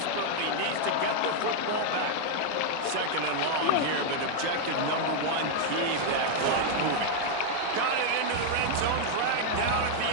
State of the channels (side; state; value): both; different; correlation 0.00